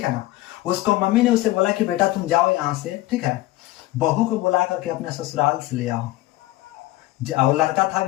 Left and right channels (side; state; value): right; quieter; 17.5 dB